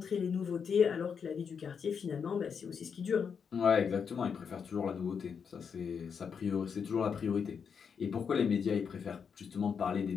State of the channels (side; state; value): right; quieter; 6.6 dB